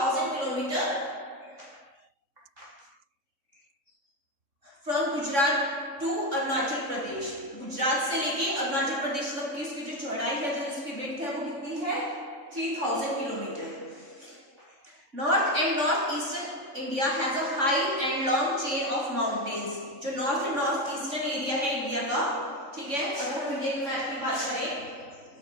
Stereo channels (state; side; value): late; left; 3.6 ms